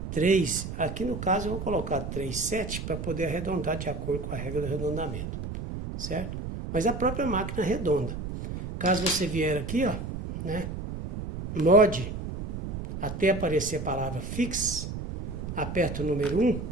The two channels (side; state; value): right; noise; rumble, 6 dB below the sound